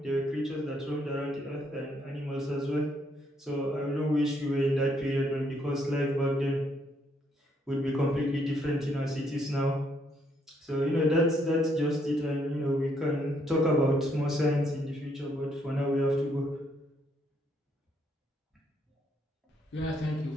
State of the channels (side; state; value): both; normal; correlation 0.72